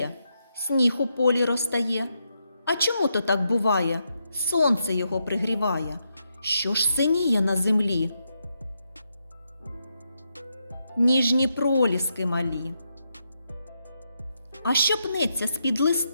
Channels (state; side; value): inverted; both; correlation -0.82